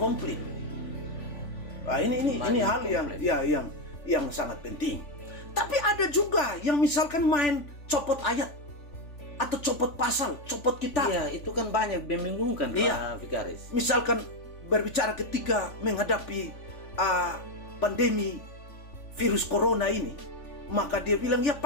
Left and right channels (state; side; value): late; right; 3.5 ms